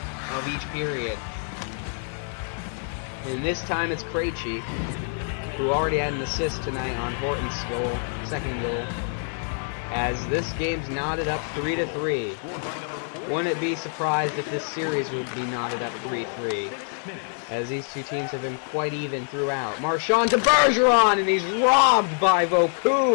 of each period. And this time it's Krejci, who already had an assist tonight on Horton's goal, second goal, as this game's knotted up 3-3. Wouldn't be surprised if this series would be knotted up 3-3, as these two teams have been quite even throughout. Marchand to Bergeron, and he's robbed by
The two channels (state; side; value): silent; right; 57 dB below the other